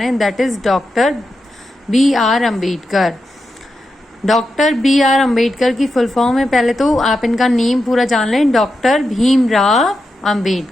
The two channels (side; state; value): both; normal; correlation 0.88